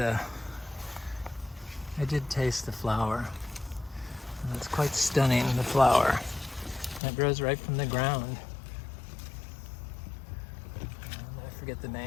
flower. And it's quite stunning, the flower. It grows right from the ground. I forget the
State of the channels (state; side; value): drops out; right; at 7.0 s